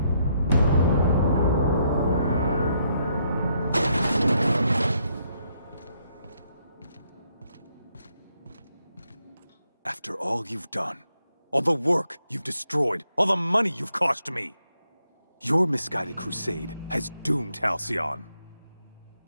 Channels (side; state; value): both; inverted; correlation -0.75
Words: After all you've done, all the work you've destroyed, all the money you've cost me, your misguided crusade has doomed Halcyon.